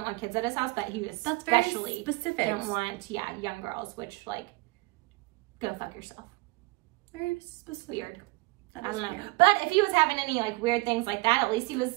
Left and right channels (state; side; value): quieter; left; 23.0 dB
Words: want kids at his house, but he was especially specific. Didn't want young girls, which like go fuck yourself. Very specific. Weird. I don't know. But if he was having any like weird things like that, at least he